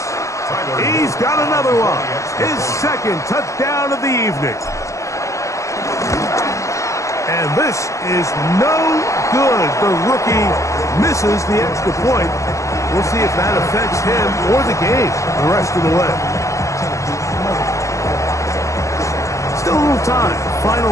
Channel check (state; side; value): late; right; 0.15 ms